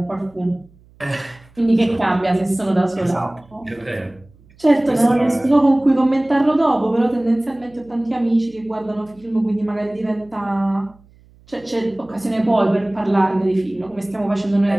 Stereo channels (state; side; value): noise; right; hum, 28 dB below the sound